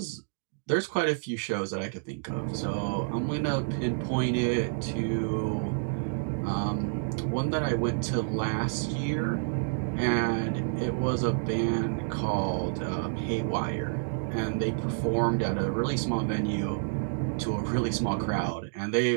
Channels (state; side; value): silent; left; digital silence